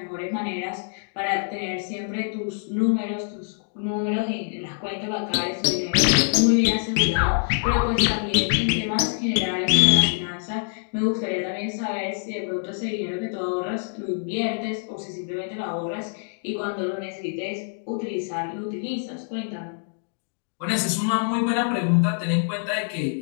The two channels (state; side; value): silent; right; 62 dB below the other